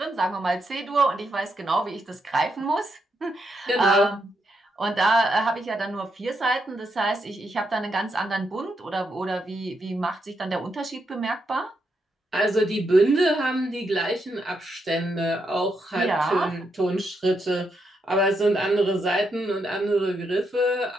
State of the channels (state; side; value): normal; both; correlation 0.81